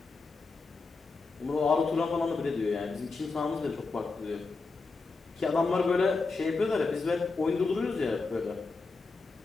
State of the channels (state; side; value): quieter; right; 4.0 dB